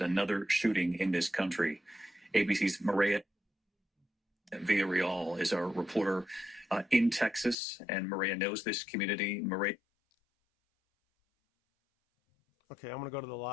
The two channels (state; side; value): drops out; right; at 7.6 s